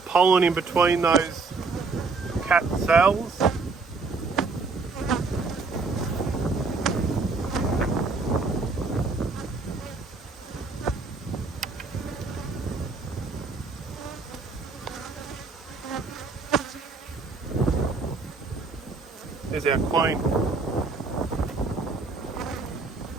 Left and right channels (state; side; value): quieter; left; 4.1 dB